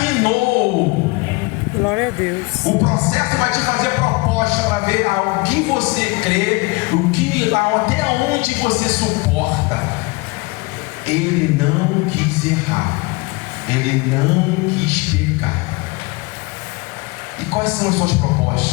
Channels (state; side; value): quieter; right; 25.3 dB